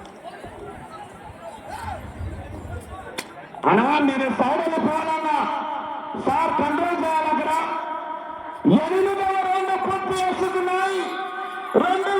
అనా మీరు సైడ్ వెళ్ళిపోవాలన్నా సార్ కంట్రోల్ చేయాలి. అక్కడ 8వ రౌండ్ పూర్తి చేసుకున్నాయి.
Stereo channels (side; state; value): both; identical; correlation 1.00